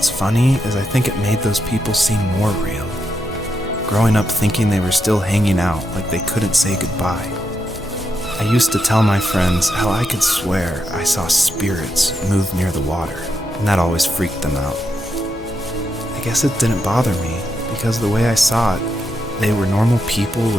funny is I think it made those people seem more real, growing up thinking they were still hanging out like they couldn't say goodbye. I used to tell my friends how I could swear I saw spirits move near the water, and that always freaked them out. I guess it didn't bother me, because the way I saw it, they were normal people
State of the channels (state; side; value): normal; both; correlation 0.83